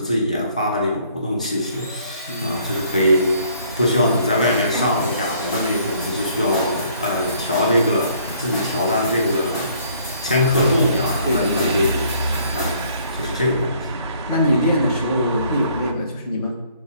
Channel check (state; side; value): inverted; both; correlation -0.62